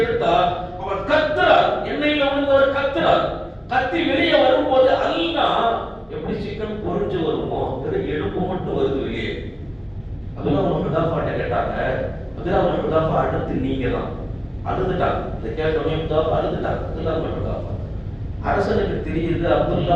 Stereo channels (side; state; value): both; identical; correlation 1.00